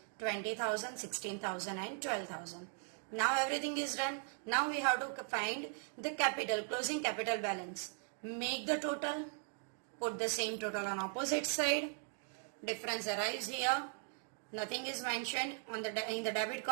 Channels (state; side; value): silent; left; 52 dB below the other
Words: 20,000, 16,000 and 12,000. Now everything is done. Now we have to find the capital, closing capital balance. Make the total. Put the same total on opposite side. Difference arrives here. Nothing is mentioned in the debit